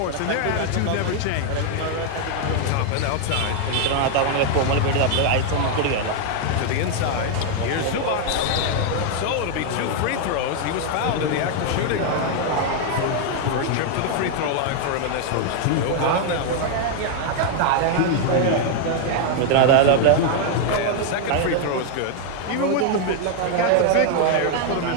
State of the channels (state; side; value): different; both; correlation 0.00